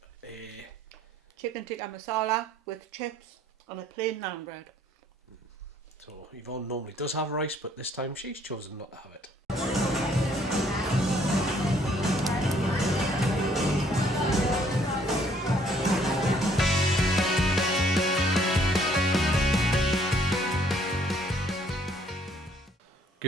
a Chicken tikka masala with chips on a plain naan bread. So Yvonne normally does have rice, but this time she's chosen not to have it.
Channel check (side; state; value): both; normal; correlation 0.63